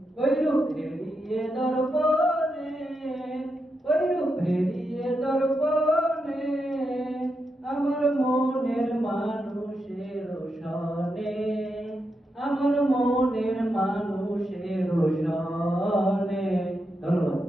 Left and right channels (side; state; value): both; normal; correlation 0.85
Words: ওই রূপ হেরিয়ে দর্পণে, ওই রূপ হেরিয়ে দর্পণে, আমার মনের মানুষের সনে, আমার মনের মানুষের সনে। ধন্যবাদ।